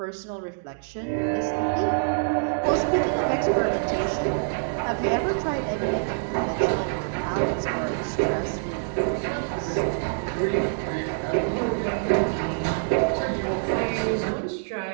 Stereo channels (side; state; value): left; silent; digital silence